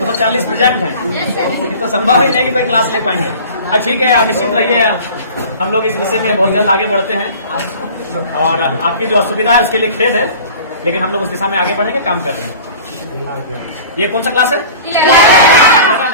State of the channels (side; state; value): both; inverted; correlation -0.42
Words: प्रेजेंट है, तो संभव ही नहीं कि कोई क्लास ले पाएंगे। ठीक है, आप निश्चित रहिए, हम लोग इस विषय में बहुत जल्द आगे बढ़ते हैं और आपकी जो असुविधा है उसके लिए खेद है, लेकिन हम लोग उस दिशा में आगे बढ़ेंगे, काम कर रहे हैं। ये कौन सा क्लास है? 11